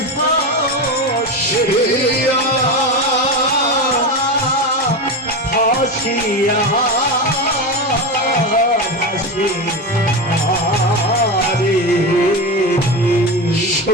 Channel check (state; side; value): normal; both; correlation 0.20